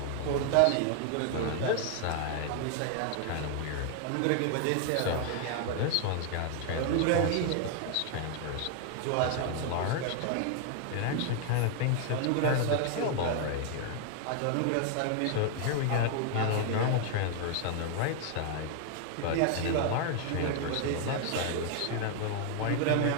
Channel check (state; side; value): different; both; correlation 0.00